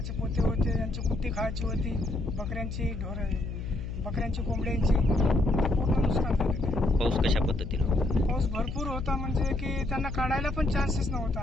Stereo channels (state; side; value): noise; left; hum, 6 dB below the sound